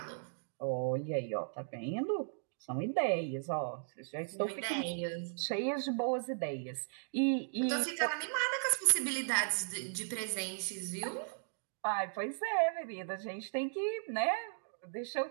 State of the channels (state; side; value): silent; left; digital silence